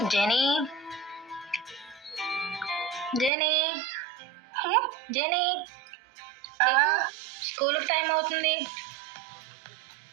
జెనీ, జెనీ, జెనీ, స్కూల్కి టైం అవుతుంది.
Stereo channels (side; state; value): left; drops out; at 3.3 s